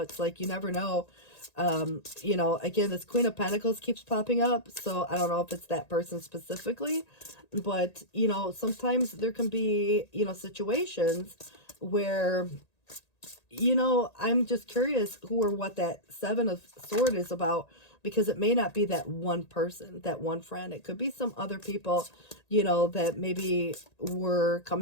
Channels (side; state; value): right; late; 1.8 ms